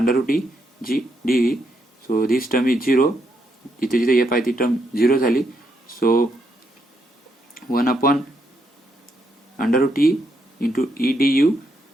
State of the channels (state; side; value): normal; both; correlation 0.78